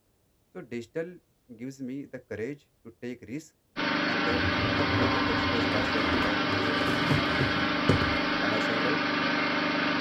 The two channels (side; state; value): both; identical; correlation 1.00